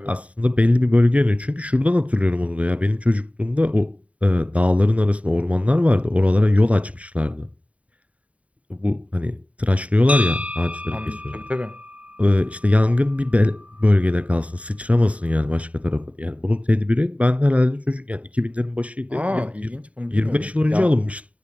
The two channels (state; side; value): late; left; 0.067 ms